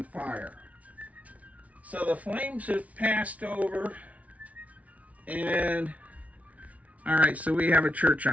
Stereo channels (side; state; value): left; late; 0.068 ms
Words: fire. So the flames have passed over, and all right, so we have a church